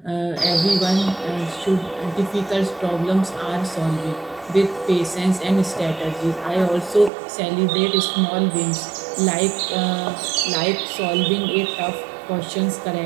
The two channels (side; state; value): left; drops out; at 7.1 s